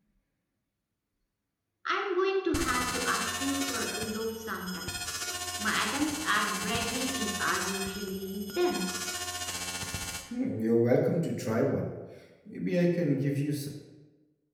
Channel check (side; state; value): both; identical; correlation 1.00